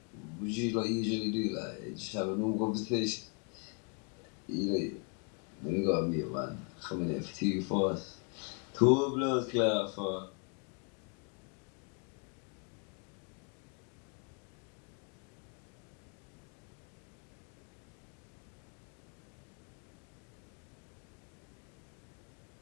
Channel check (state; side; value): quieter; right; 36.9 dB